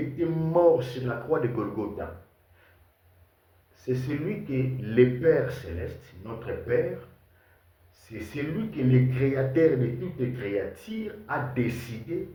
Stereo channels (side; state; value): both; identical; correlation 1.00